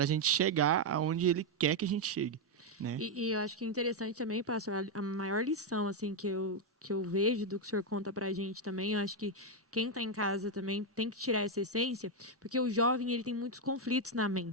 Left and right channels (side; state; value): both; normal; correlation 0.02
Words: a gente chegar aonde Ele quer que a gente chegue, né? E eu acho que é interessante também, pastor, a maior lição assim que eu vejo do que o senhor conta pra gente também, eu acho que quem está em casa também tem que tirar essa essência, porque o jovem ele tem muitos conflitos na